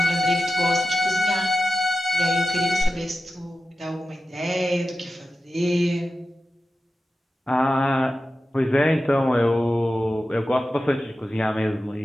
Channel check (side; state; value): both; normal; correlation 0.93